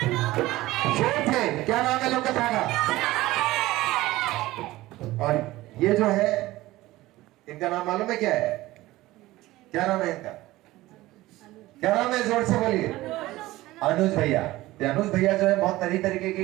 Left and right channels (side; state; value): left; quieter; 17.7 dB